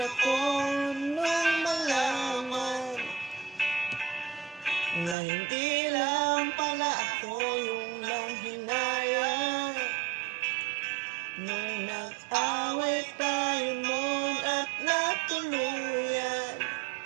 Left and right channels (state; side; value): drops out; left; at 5.2 s